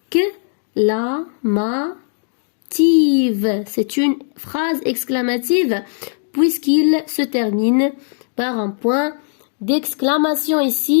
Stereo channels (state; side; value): silent; right; 67 dB below the other